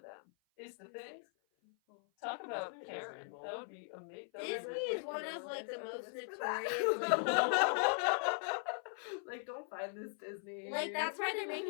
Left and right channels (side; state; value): right; silent; 52 dB below the other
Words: Is the thing. Talk about Disney is Karen. evil. That would be amazing. Disney is one of like the most notorious. Like, don't find this Disney. Like that's why they're